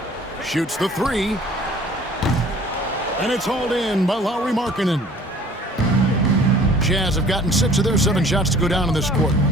Shoots the three. And it's hauled in by Lauri Markkanen. Jazz have gotten 6 of their 7 shots to go down in this quarter.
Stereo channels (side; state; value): both; normal; correlation 0.50